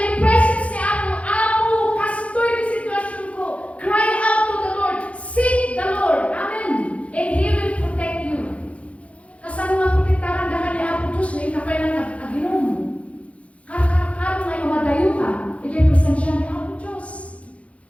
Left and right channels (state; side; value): late; right; 0.063 ms